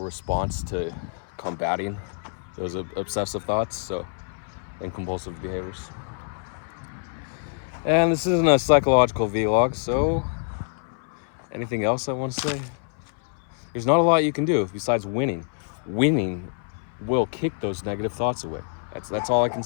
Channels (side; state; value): right; silent; 61 dB below the other